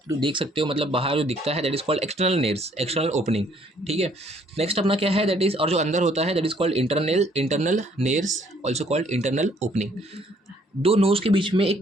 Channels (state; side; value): normal; both; correlation 0.63